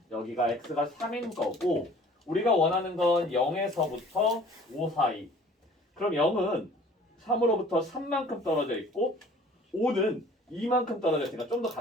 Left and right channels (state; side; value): normal; both; correlation 0.50